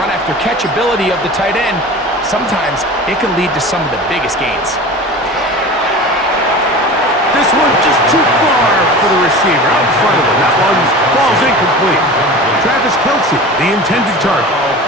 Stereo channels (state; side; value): normal; both; correlation 0.35